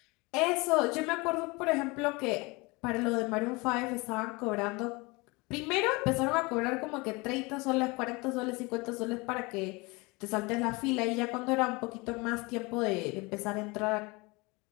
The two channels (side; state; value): right; quieter; 25.6 dB